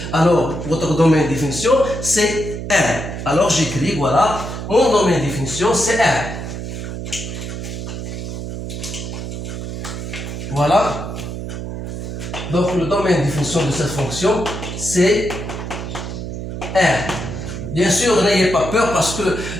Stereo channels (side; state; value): right; noise; hum, 6 dB below the sound